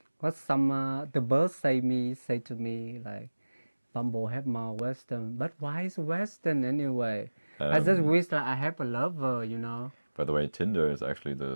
What some the birds say to me like Bumble have more Western, but why is Western anyway? I just wish that I have a lover, you know. By the way, Tinder is actually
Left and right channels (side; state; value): both; inverted; correlation -1.00